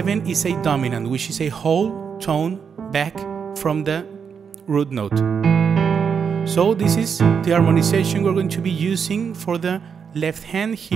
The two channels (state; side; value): quieter; left; 6.6 dB